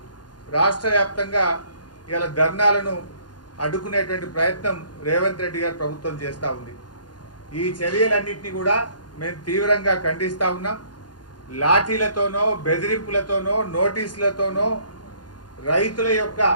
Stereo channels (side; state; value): right; late; 0.70 ms